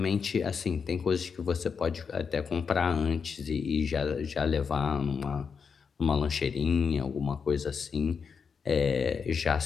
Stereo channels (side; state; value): right; quieter; 6.0 dB